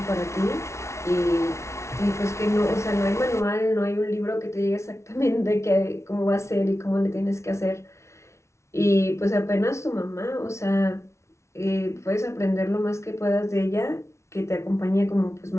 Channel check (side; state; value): right; late; 0.13 ms